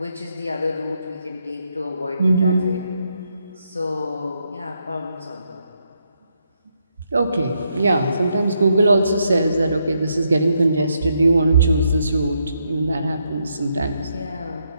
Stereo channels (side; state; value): both; inverted; correlation -0.79